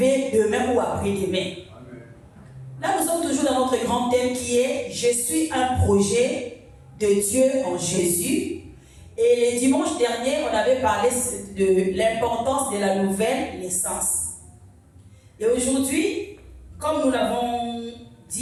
demain ou après-demain. Là, nous sommes toujours dans notre grand thème qui est « Je suis un projet de Dieu en Jésus ». Et le dimanche dernier, on avait parlé de l'importance de la nouvelle naissance. Et aujourd'hui, comme nous l'avons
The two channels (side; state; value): both; identical; correlation 1.00